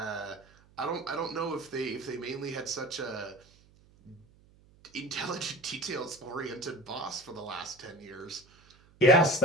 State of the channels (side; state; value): right; noise; hum, 28 dB below the sound